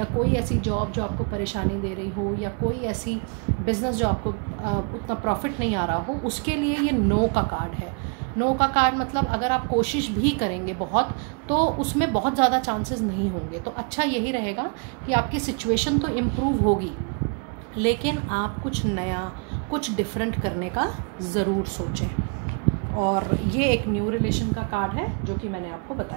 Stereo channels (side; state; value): left; quieter; 38.1 dB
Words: कोई ऐसी जॉब जो आपको परेशानी दे रही हो, या कोई ऐसी बिजनेस जो आपको उतना प्रॉफिट नहीं आ रहा हो, उसके लिए ये नो का कार्ड है। नो का कार्ड मतलब अगर आप कोशिश भी करेंगे बहुत, तो उसमें बहुत ज़्यादा चांसेस नहीं होंगे। तो अच्छा यही रहेगा कि आपकी सिचुएशन तो इम्प्रूव होगी, लेकिन आप कुछ नया, कुछ डिफरेंट करने का ज़रूर सोचें। और ये एक न्यू रिलेशन का कार्ड है जो कि मैंने आपको